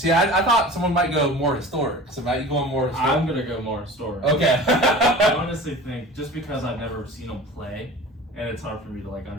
I thought someone might go more historic. So, Matt, you going more historic? I'm going to go more historic. Okay. I honestly think, just because I've never seen him play, and it's hard for me to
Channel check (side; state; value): both; normal; correlation 0.39